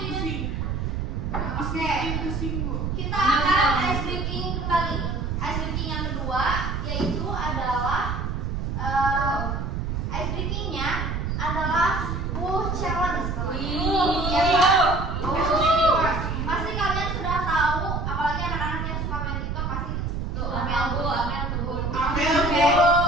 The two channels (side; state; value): right; noise; rumble, 2 dB below the sound